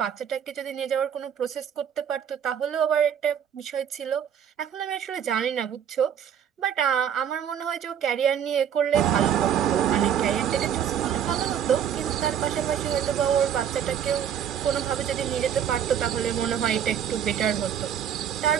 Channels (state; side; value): quieter; left; 8.8 dB